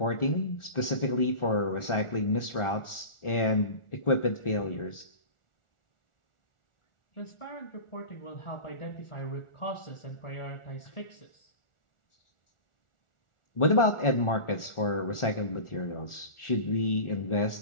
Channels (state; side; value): late; right; 1.4 ms